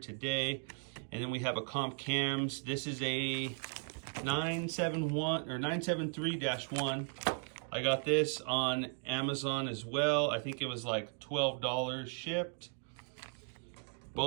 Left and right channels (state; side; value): silent; left; 53 dB below the other